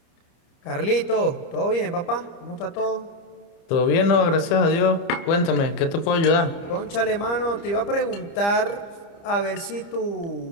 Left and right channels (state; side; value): late; right; 30 ms